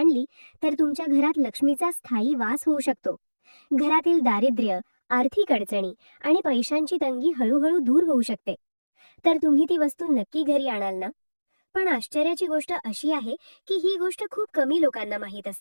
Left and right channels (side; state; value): both; inverted; correlation -1.00